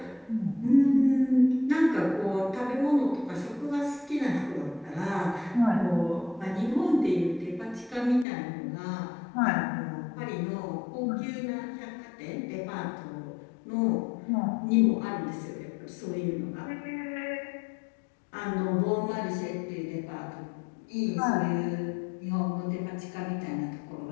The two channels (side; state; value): right; drops out; at 8.2 s